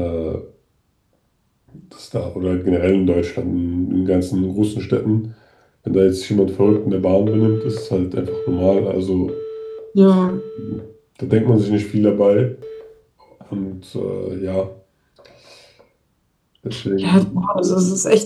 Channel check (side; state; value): both; identical; correlation 1.00